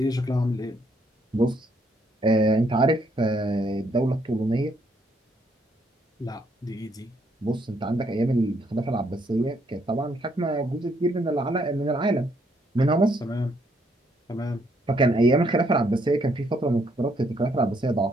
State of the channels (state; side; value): normal; both; correlation 0.71